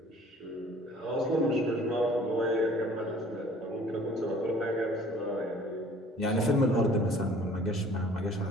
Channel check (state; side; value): normal; both; correlation 0.52